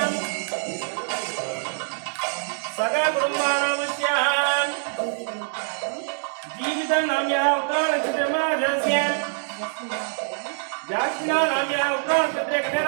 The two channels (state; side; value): silent; left; digital silence